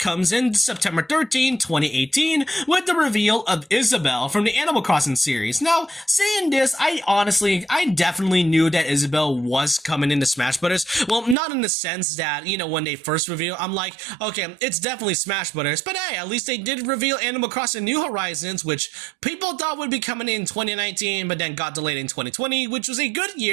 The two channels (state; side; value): drops out; left; at 11.4 s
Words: in September 13, 2018, with the reveal of Isabelle from the Animal Crossing series. Now, saying this, I definitely knew that Isabelle was coming into Smash Bros. Well, not in the sense that, you know, when they first revealed, I'm like, okay, it's definitely Smash Bros. But hey, at least they did reveal Animal Crossing New Horizons, which people thought would be coming in 2019, but then got delayed in 2020, which was a good